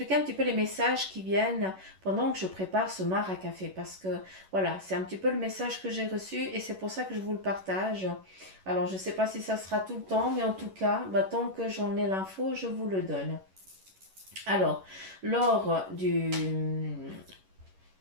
un petit peu les messages qui viennent pendant que je prépare ce mar à café parce que voilà, c'est un petit peu le message que j'ai reçu et c'est pour ça que je vous le partage. Alors, je ne sais pas si ça sera tout le temps, mais en tout cas, tant que j'en ai l'info, je vous le donne. Alors, lors du...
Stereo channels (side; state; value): left; late; 11 ms